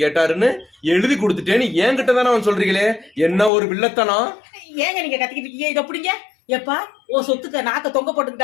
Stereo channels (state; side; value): drops out; right; at 3.5 s